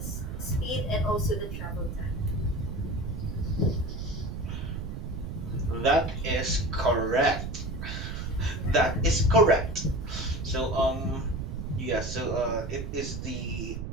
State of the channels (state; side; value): noise; right; rumble, 5 dB below the sound